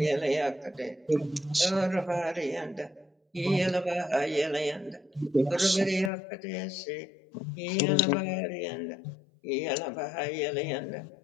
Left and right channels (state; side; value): drops out; right; at 6.1 s